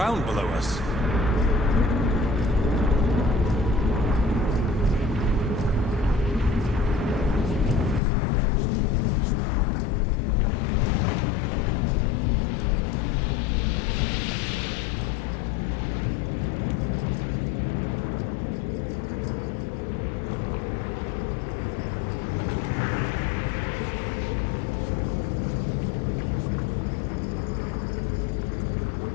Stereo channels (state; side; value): drops out; right; at 8.0 s